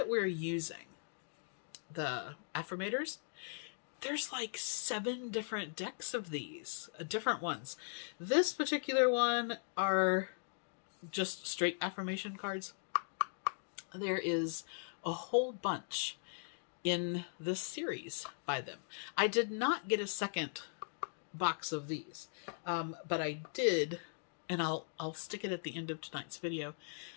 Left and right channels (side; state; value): right; silent; digital silence